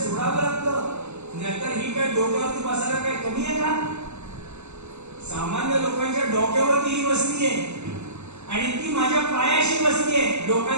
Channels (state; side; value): late; left; 0.82 ms